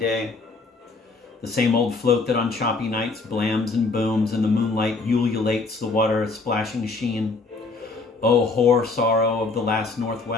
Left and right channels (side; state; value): right; quieter; 3.8 dB